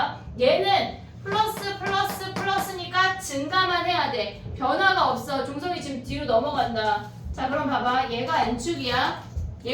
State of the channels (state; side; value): identical; both; correlation 1.00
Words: 얘는 플러스 플러스 플러스니까 증가만 해야 돼. 변화가 없어. 종성이 지금 뒤로 넘어간다. 자 그럼 봐봐. 얘가 N축이야.